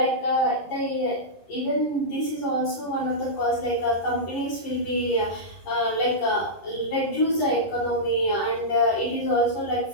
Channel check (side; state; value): right; late; 11 ms